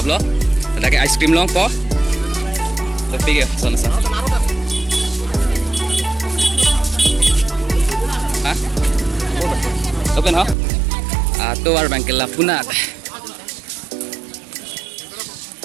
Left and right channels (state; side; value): drops out; left; at 10.6 s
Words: लो ताकि आइसक्रीम लो पो तो पी गया सोना सा हाँ open हो तो वार बैंक के लापुनात